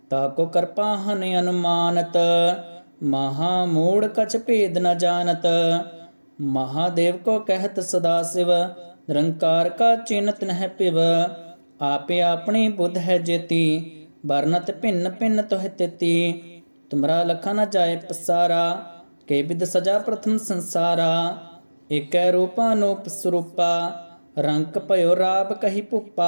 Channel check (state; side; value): inverted; both; correlation -1.00